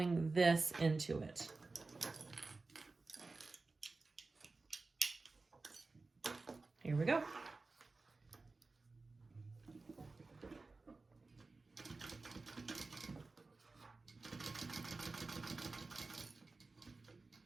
this into it. Here we go.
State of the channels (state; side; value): quieter; left; 3.7 dB